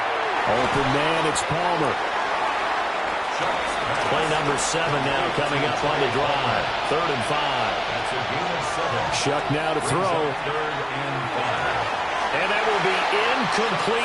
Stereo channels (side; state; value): both; identical; correlation 1.00